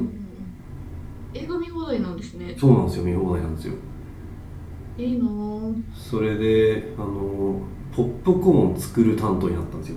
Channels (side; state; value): both; identical; correlation 1.00